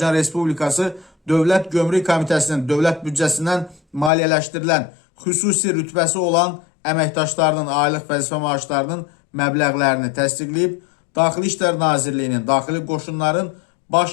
Respublikası Dövlət Gömrük Komitəsinin dövlət büdcəsindən maliyyələşdirilən xüsusi rütbəsi olan əməkdaşlarının aylıq vəzifə maaşlarının məbləğlərini təsdiqləyib. Daxili İşlər Nazirliyinin, Daxili Qoşunların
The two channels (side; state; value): right; drops out; at 4.1 s